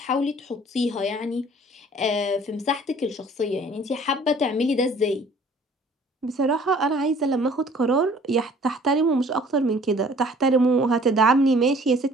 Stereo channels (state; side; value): normal; both; correlation 0.54